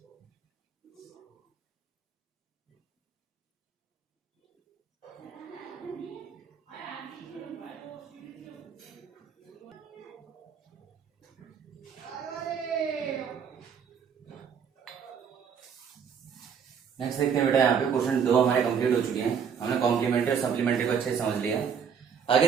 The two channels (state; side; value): quieter; left; 7.1 dB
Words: नेक्स्ट देखते हैं बेटा, यहाँ पे क्वेश्चन 2 हमारे कंप्लीट हो चुके हैं। हमने कॉम्प्लीमेंट्री और सप्लीमेंट्री को अच्छे से समझ लिया। आगे